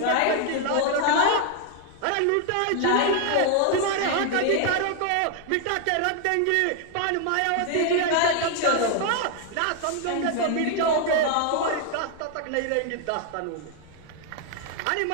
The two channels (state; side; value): different; both; correlation 0.00